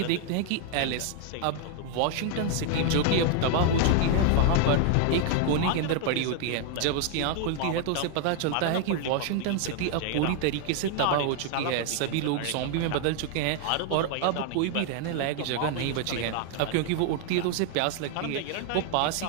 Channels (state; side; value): different; both; correlation 0.00